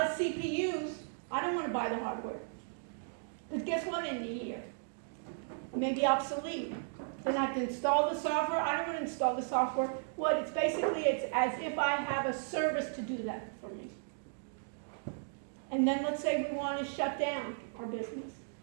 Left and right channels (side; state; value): left; silent; digital silence